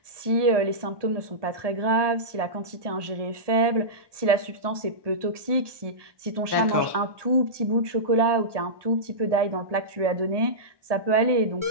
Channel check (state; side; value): late; left; 1.2 ms